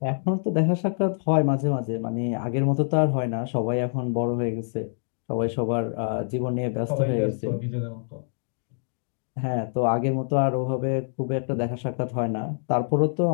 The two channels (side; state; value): right; silent; digital silence